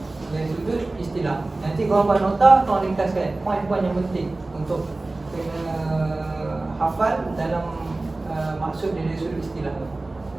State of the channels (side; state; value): left; quieter; 3.1 dB